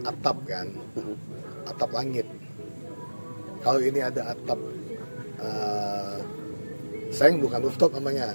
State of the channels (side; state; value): both; inverted; correlation -1.00